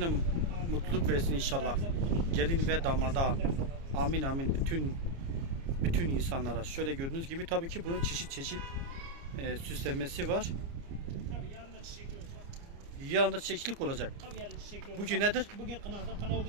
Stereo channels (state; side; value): late; left; 29 ms